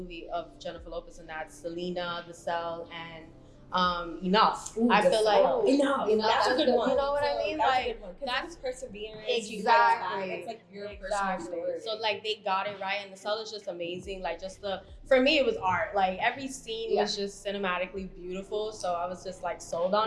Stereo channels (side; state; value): both; identical; correlation 1.00